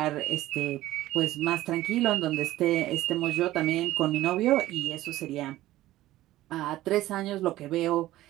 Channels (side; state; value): left; quieter; 15.6 dB